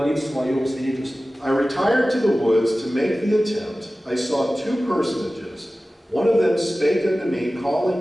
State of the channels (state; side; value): normal; both; correlation 0.96